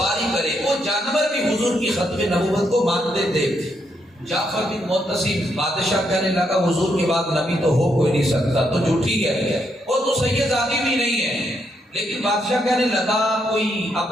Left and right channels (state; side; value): normal; both; correlation 0.77